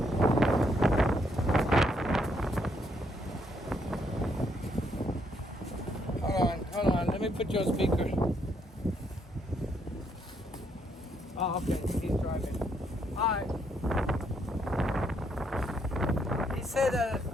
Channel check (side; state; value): both; normal; correlation 0.73